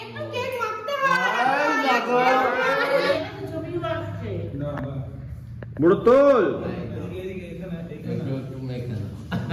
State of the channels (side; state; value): both; identical; correlation 1.00